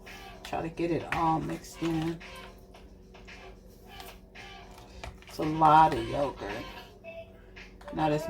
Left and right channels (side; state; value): both; identical; correlation 1.00